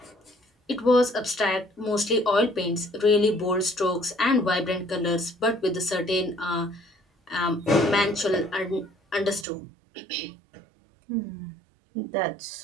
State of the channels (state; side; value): drops out; left; at 9.5 s